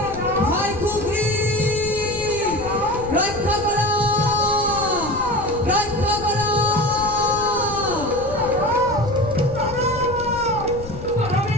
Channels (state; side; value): noise; left; rumble, 12 dB below the sound